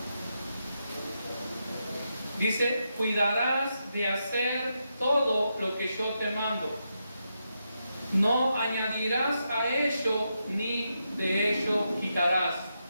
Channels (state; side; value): inverted; both; correlation -0.84